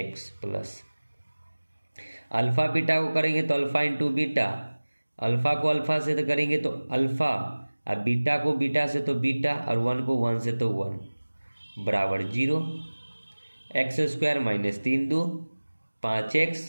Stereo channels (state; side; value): inverted; both; correlation -1.00